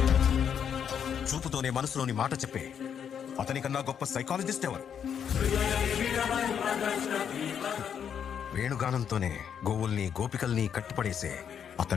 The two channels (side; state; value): right; quieter; 8.1 dB